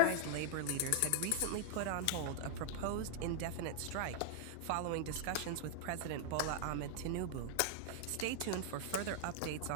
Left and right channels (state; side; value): different; both; correlation 0.00